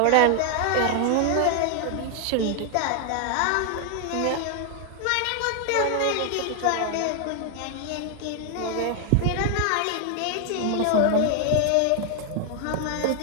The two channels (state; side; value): different; both; correlation 0.00